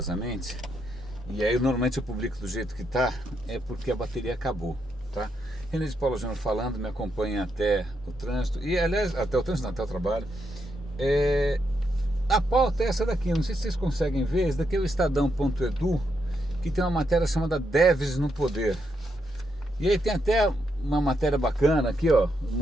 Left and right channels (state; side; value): normal; both; correlation 0.80